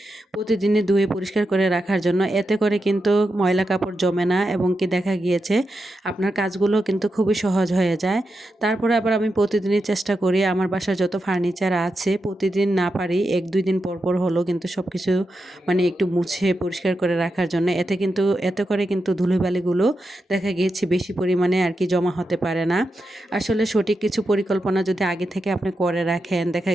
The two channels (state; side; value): normal; both; correlation 0.88